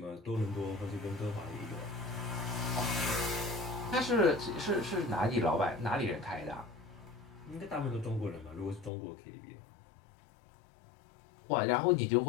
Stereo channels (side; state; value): right; drops out; at 8.9 s